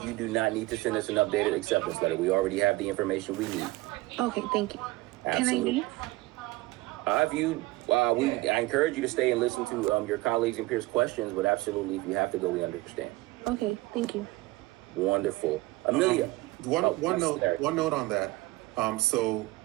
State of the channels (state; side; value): quieter; left; 20.2 dB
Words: you do not need to send us an updated acceptance letter. We already have the information we need. Okay, thank you. Absolutely. Can I leave? I encourage you to stay and listen to your colleagues and peers' questions, but absolutely, if you have to go, we understand. Okay, thank you. Wonderful. Amelia. One note on that. So